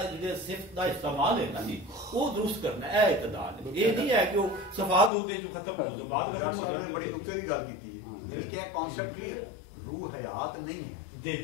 جڑے صفت دا استعمال ہے نا جی وہ درست کرنا ہے، اے اعتدال ہے، یہ نہیں ہے کہ وہ صفات ہو دے جو ختم ہو بعد ختم ہو جائے۔ بڑی نقطے کی گل کیتی ہے، یعنی کہ ایک کانسیپٹ کلیئر ہے روح حیات نہیں ہے،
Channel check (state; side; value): drops out; right; at 5.1 s